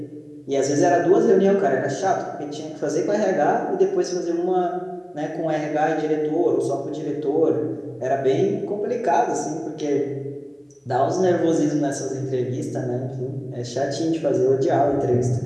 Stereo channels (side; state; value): both; identical; correlation 1.00